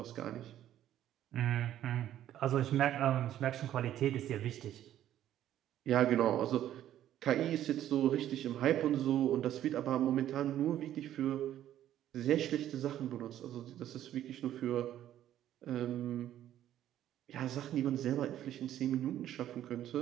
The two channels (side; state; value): left; quieter; 11.9 dB